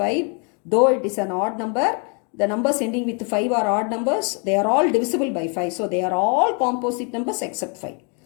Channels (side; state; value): right; quieter; 37.2 dB